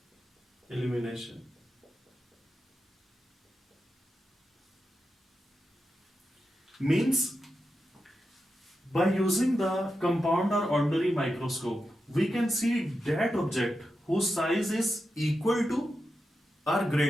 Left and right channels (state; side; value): normal; both; correlation 0.89